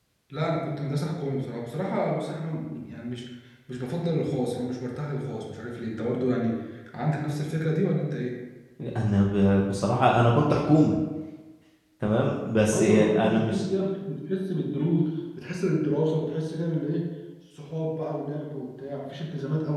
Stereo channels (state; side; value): identical; both; correlation 1.00